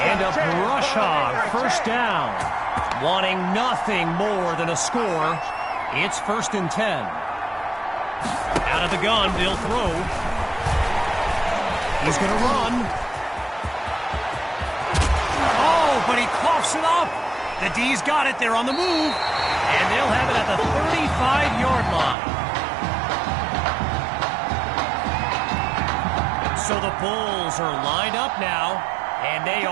a Brush Hog 1st down. Wanting nothing more than a score, it's 1st and 10. Out of the gun, they'll throw. He's going to run. Oh, but he coughs it up. The D's got it. They're on the move. And they'll have it at the 35-yard line. So the Bulls are lined up now, and they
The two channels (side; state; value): left; drops out; at 22.2 s